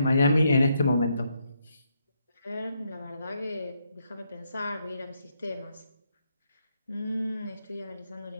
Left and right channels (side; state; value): both; inverted; correlation -0.77